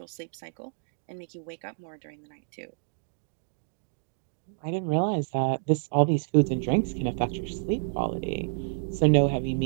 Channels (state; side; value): silent; left; digital silence